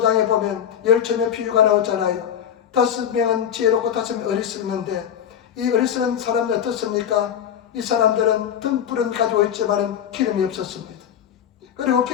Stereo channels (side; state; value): right; quieter; 9.3 dB